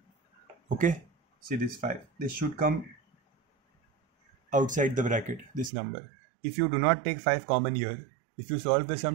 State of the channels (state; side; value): drops out; left; at 5.7 s